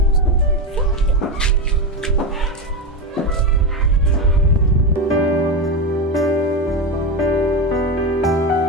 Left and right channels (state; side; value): normal; both; correlation 0.15